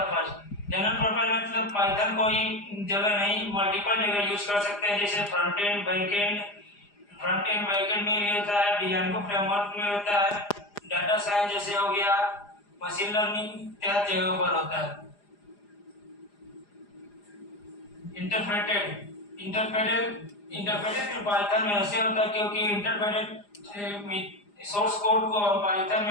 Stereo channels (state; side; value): late; right; 4.9 ms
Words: मतलब पाइथन कोई जगह नहीं, मल्टीपल जगह यूज कर सकते हैं, जैसे फ्रंट एंड बैक एंड में भी होता है, डिजाइन फ्रेमवर्क में होता है, डाटा साइंस जैसे हो गया, मशीन लर्निंग इत्यादि जगहों पर होता है। इंटरप्रेटेड पाइथन में ऐसे होता है क्योंकि इंटरप्रेटेड सोर्स कोड को हम पाइथन